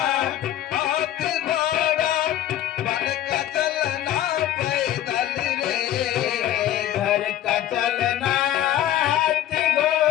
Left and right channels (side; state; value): right; quieter; 12.3 dB